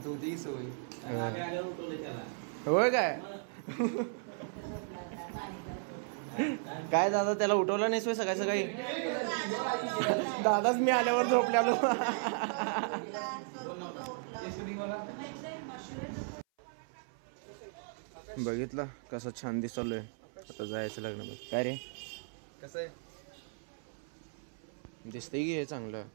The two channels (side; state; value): left; silent; 54 dB below the other